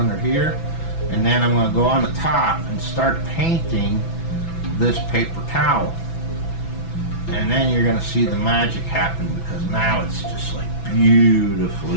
here. And then I'm going to go on the top and start painting this paper towel. And then you're going to see the magic happen, because now it's just like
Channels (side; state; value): right; late; 6.0 ms